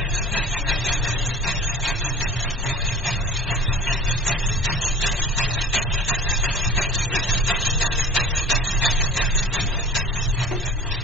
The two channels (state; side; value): normal; both; correlation 0.42